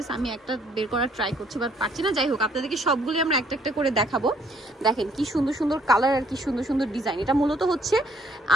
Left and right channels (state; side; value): normal; both; correlation 0.65